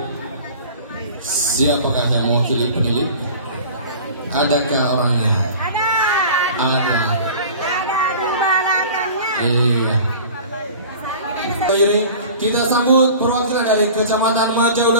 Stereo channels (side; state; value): both; inverted; correlation -0.41